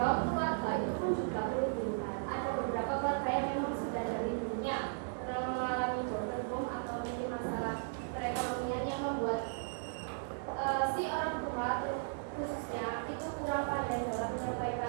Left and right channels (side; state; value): left; silent; digital silence